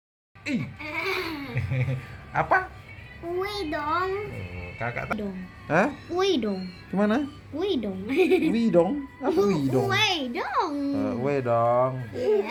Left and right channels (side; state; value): both; identical; correlation 1.00